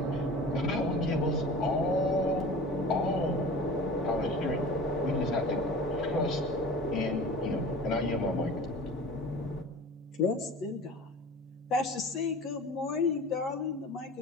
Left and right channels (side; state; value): both; normal; correlation 0.39